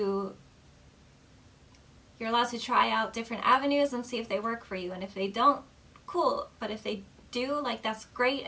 try out different avenues and see if they work for you. And if they don't, cool. But if they do, like, that's great,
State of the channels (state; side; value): identical; both; correlation 1.00